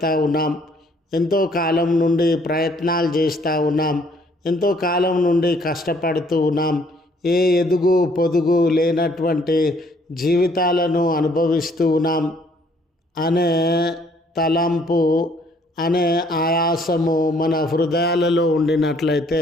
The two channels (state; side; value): normal; both; correlation 0.63